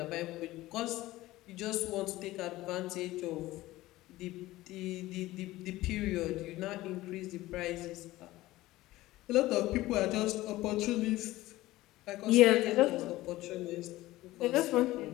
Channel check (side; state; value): right; quieter; 17.3 dB